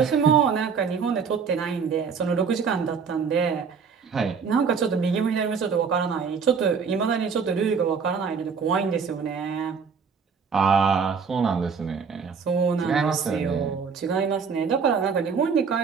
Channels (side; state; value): left; quieter; 5.9 dB